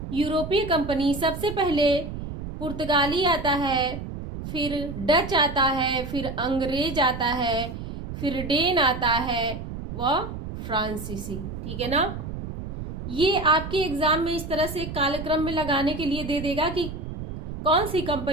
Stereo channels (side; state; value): right; noise; rumble, 8 dB below the sound